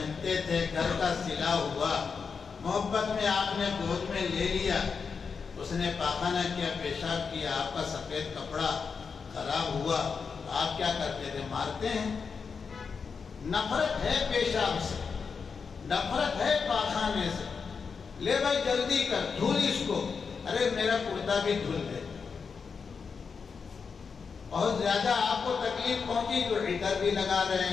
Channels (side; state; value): right; quieter; 5.6 dB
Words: تھے، گھر کا سلا ہوا، محبت میں آپ نے گود میں لے لیا، اس نے پاخانہ کیا، پیشاب کیا، آپ کا سفید کپڑا خراب ہوا، آپ کیا کرتے تھے؟ مارتے ہیں۔ نفرت ہے پیشاب سے، نفرت ہے پاخانے سے، لے بھائی جلدی کر، دھل اس کو، ارے میرا کرتا بھی دھل دے۔ بہت زیادہ آپ کو تکلیف پہنچی تو عطر بھی لگا رہے